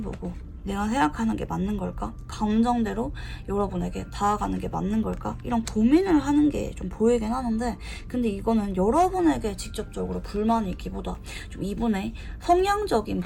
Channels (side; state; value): both; identical; correlation 1.00